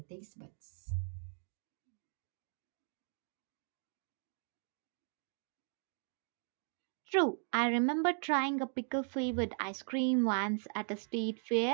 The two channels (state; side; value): silent; left; 52 dB below the other